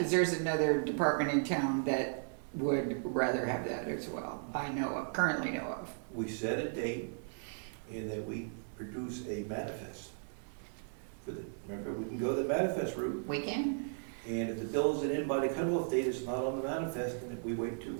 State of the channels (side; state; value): left; silent; digital silence